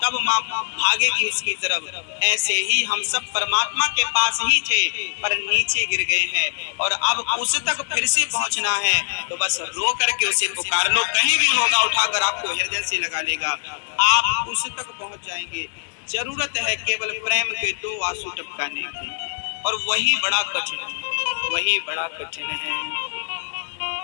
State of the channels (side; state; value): right; silent; digital silence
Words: तब माँ भागेगी उसकी तरफ। ऐसे ही हम सब परमात्मा के पास ही थे पर नीचे गिर गए हैं और अब उस तक फिर से पहुंचना है, तो बस रो करके उसे पुकार लो, कहीं भी होगा उठाकर आपको हृदय से लगा लेगा, आप उस तक पहुंच जाएंगे। जरूरत है केवल प्रेम के 2 आंसू टपकाने की, और वही बड़ा कठिन है, वही बड़ा कठिन है।